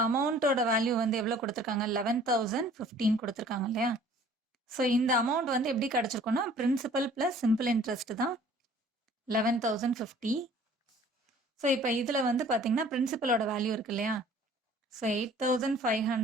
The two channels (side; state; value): both; normal; correlation 0.52